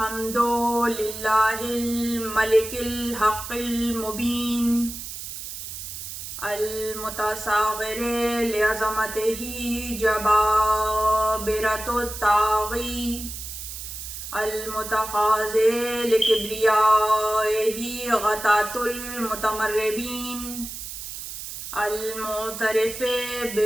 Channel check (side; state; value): right; noise; hiss, 9 dB below the sound